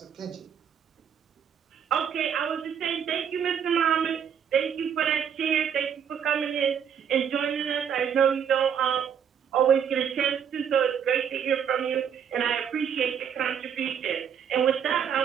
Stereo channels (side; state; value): left; quieter; 8.0 dB